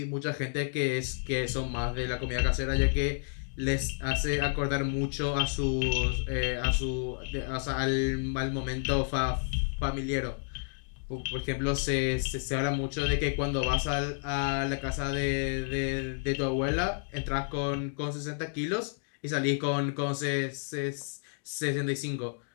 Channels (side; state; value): right; silent; digital silence